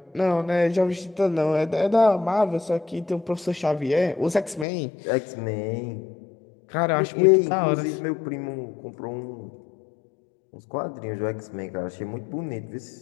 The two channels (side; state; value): right; drops out; at 4.7 s